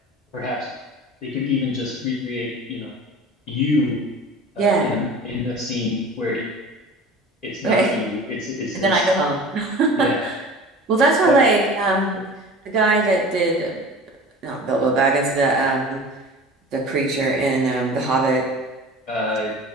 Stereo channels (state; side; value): normal; both; correlation 0.39